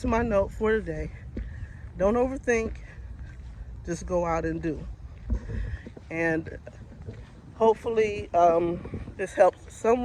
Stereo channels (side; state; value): both; identical; correlation 1.00